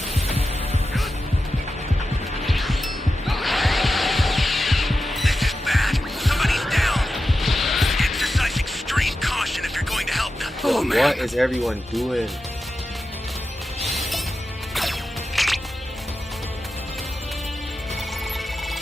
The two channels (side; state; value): both; normal; correlation 0.91